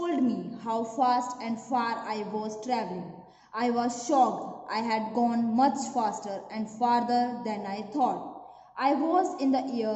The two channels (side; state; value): both; identical; correlation 1.00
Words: me how fast and far I was traveling. I was shocked. I had gone much faster and farther than I thought. I was in the